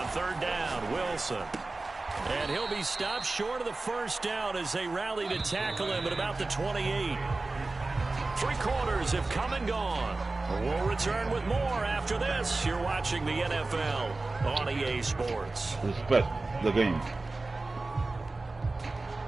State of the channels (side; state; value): left; quieter; 3.3 dB